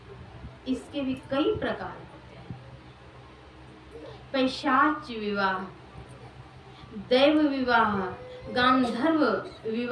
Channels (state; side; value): identical; both; correlation 1.00